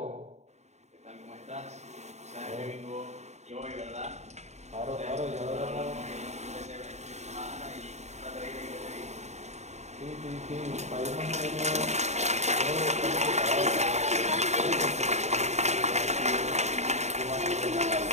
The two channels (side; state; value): left; late; 0.33 ms